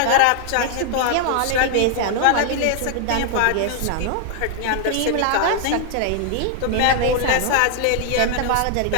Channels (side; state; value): both; different; correlation 0.00